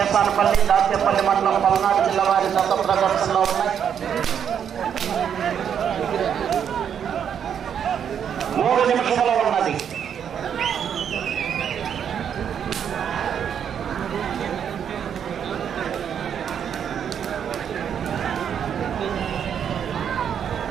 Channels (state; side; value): quieter; left; 8.3 dB